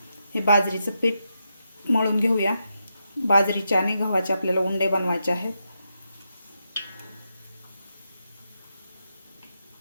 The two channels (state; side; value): inverted; both; correlation -0.85